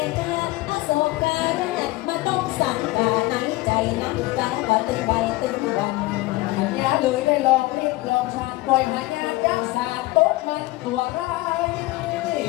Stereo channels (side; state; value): right; quieter; 19.8 dB